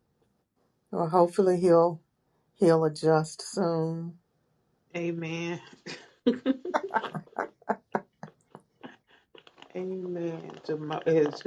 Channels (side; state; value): both; identical; correlation 1.00